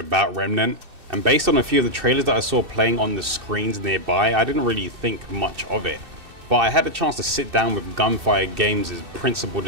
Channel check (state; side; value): late; left; 2.6 ms